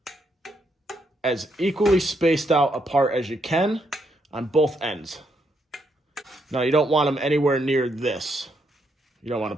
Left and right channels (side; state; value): both; normal; correlation 0.77